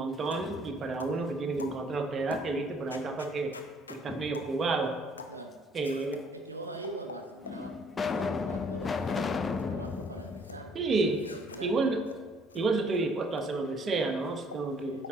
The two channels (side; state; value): both; normal; correlation 0.62